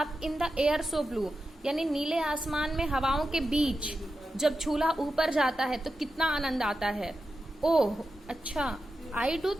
in the air so blue, यानी नीले आसमान में हवाओं के बीच जब झूला ऊपर जाता है तो कितना आनंद आता है. ओह अच्छा. I do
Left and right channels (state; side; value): normal; both; correlation 0.90